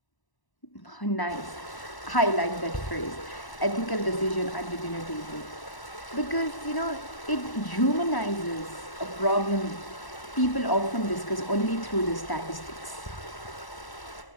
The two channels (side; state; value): right; late; 1.0 ms